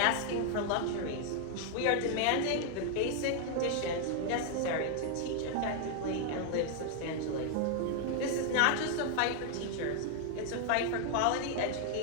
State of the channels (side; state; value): both; different; correlation 0.00